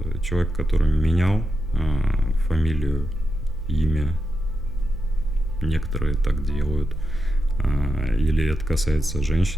человека, который менял фамилию, имя, некоторые так делают, или это касается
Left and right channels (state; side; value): normal; both; correlation 0.88